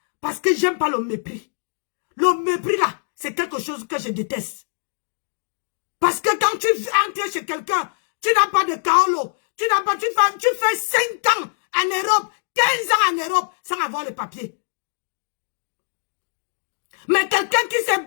Parce que j'aime pas le mépris. Le mépris, là, c'est quelque chose que je déteste. Parce que quand tu entres chez quelqu'un, tu n'as pas de kaolo. Tu fais 5 ans en Europe, 15 ans en Europe, sans avoir le papier. Mais quelqu'un qui s'est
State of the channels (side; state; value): right; silent; digital silence